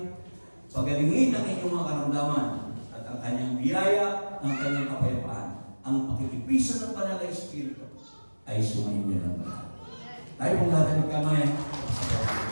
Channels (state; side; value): inverted; both; correlation -1.00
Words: pagalingin ang inyong mga karamdaman, at ang kanyang biyaya, ang kanyang kapayapaan, ang pakitipisan ng banal na Espiritu ay sumainyo ng lahat. Tayo pong lahat ay magkamay.